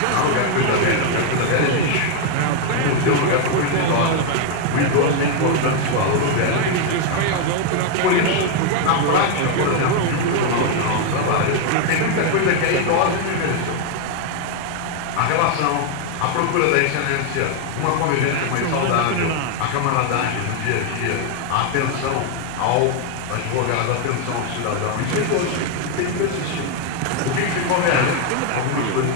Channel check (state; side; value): different; both; correlation 0.01